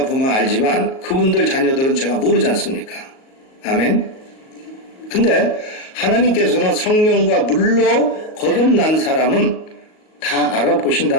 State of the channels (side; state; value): right; late; 38 ms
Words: 보면 알지만, 그분들 자녀들은 제가 모르지 않습니까? 아멘? 근데, 하나님께서는 성령과 물로 거듭난 사람은 다